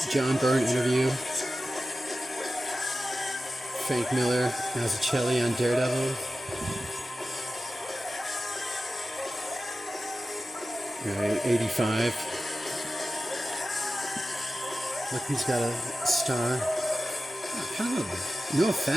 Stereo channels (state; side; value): normal; both; correlation 0.94